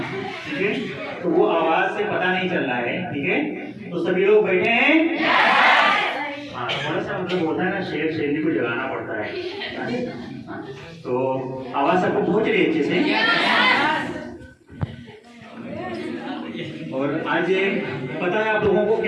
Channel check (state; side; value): identical; both; correlation 1.00